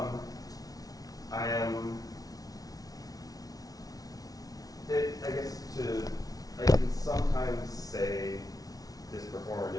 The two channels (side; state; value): right; late; 0.18 ms